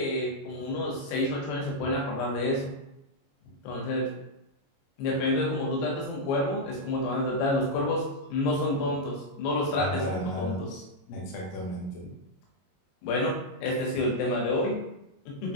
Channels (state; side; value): late; right; 22 ms